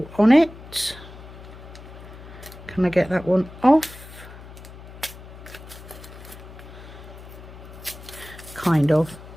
on it. Can I get that one off? Kind of,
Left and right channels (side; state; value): left; noise; hum, 16 dB below the sound